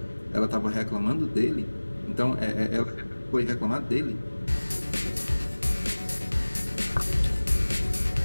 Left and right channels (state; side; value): inverted; both; correlation -1.00